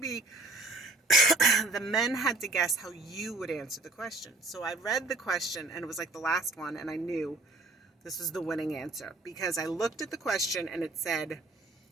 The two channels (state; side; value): quieter; left; 3.3 dB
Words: the men had to guess how you would answer the question. So I read the question, and it was like the last one, and I knew this was the winning answer because I looked at the question and it said,